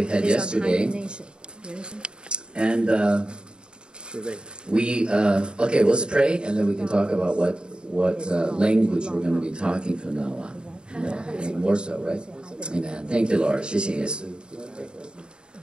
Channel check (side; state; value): left; late; 0.050 ms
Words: had yesterday. And okay, let's pray, and then we can talk about what language we're going to be talking from now on. More so, right? Amen. Thank you, Lord. 谢谢耶稣。